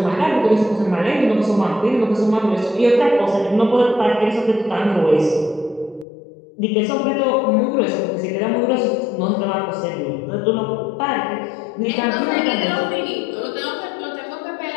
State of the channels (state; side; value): drops out; right; at 6.1 s